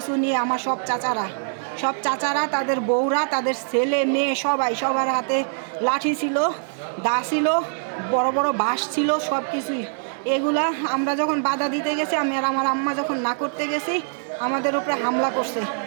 নিয়ে। আমার সব চাচারা তাদের বউরা, তাদের ছেলে মেয়ে সবাই, সবার হাতে লাঠি ছিল, দা ছিল, বড় বড় বাঁশ ছিল, সব কিছুই। এগুলা আমরা যখন বাধা দিতে গেছি, আমি আর আমার আম্মা যখন না করতে গেছি, আমাদের উপরে হামলা করছে।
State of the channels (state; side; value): silent; left; digital silence